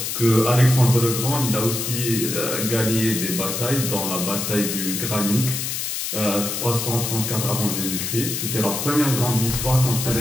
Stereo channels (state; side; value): noise; left; hiss, 3 dB below the sound